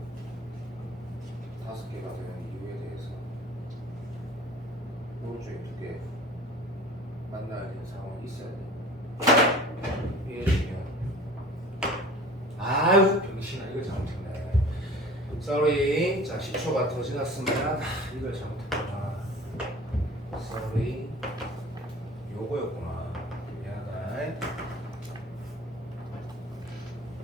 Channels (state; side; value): normal; both; correlation 0.43